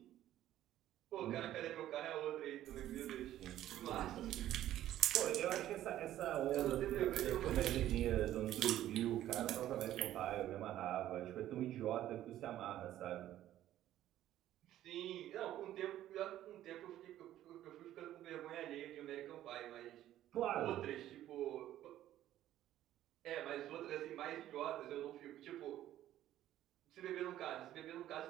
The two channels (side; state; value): left; quieter; 12.9 dB